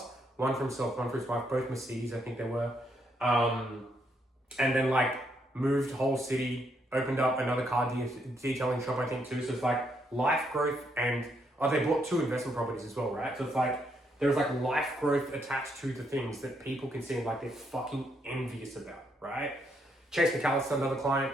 One for himself, one for his wife, both Mercedes, I think they were. And then like moved whole city, opened up another car detailing shop, I think too. So it's like life growth and they bought 2 investment properties as well, right? So it's like, there's like life growth attached to the things that people can see like they're fucking envious about, right? Chase McAllister, another client,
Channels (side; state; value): both; normal; correlation 0.75